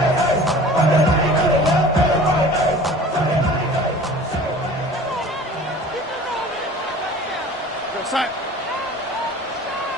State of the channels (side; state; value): both; normal; correlation 0.44